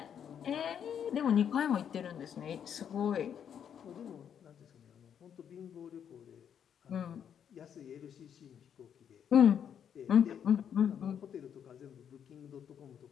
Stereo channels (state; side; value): quieter; right; 8.5 dB